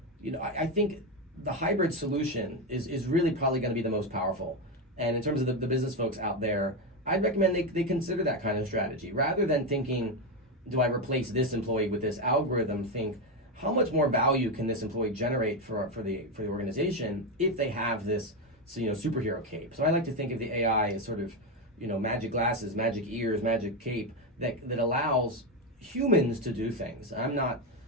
I think the hybrid solution is really probably going to be the most powerful. And in terms of the business folks out there, I'd recommend they consider that kind of strategy. Rather than thinking, do I replace this employee with this algorithm, think, how much more value can this employee generate for the organization if they have this superhero cape? So I like to think of the AI as sort of magic glasses, magic ears, magic cape that allows humans to do things. I'm not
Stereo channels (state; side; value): normal; both; correlation 0.10